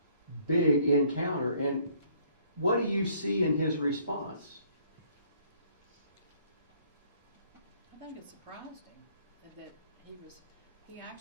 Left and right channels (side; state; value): both; inverted; correlation -0.62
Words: big encounter. And what do you see in his response? I think it surprised him that he